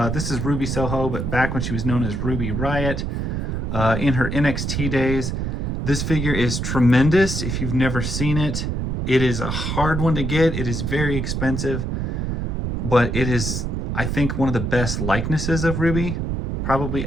Ruby Soho, but back when she was known as Ruby Riott, in her NXT days. This figure is tremendous if you've never seen it. It is a hard one to get. It is very expensive, but it is, I think, one of the best likenesses of Ruby probably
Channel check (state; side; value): noise; right; rumble, 1 dB below the sound